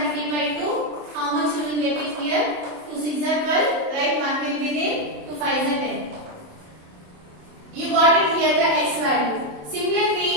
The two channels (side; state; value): left; late; 27 ms